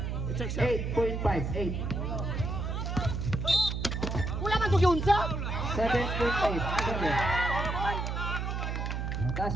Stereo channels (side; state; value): right; noise; hum, 2 dB below the sound